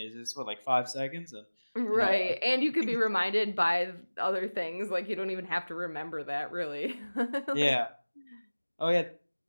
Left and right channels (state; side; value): inverted; both; correlation -1.00